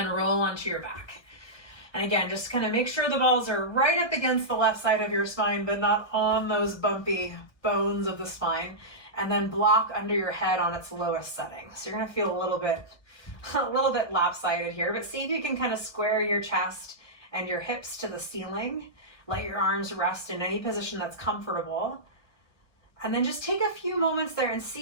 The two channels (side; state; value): right; late; 1.6 ms